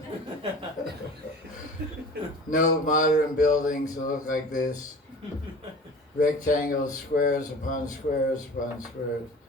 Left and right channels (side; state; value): both; normal; correlation 0.40